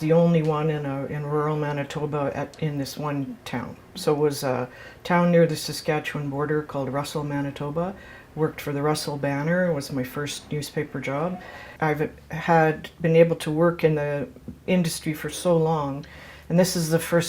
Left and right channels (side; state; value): both; identical; correlation 1.00